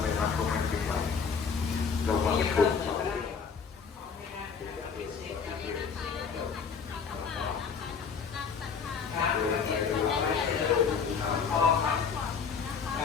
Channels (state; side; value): quieter; right; 6.0 dB